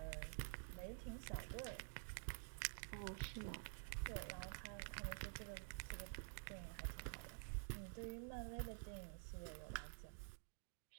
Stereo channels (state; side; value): silent; left; digital silence